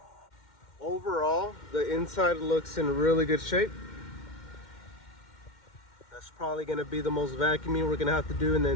Overall, the inside looks in really good shape. That's probably going to be the most vacuuming we're going to have to do in the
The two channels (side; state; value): right; late; 2.1 ms